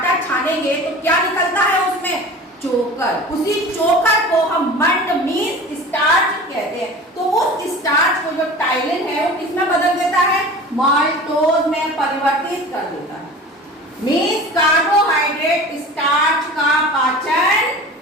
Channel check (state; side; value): normal; both; correlation 0.38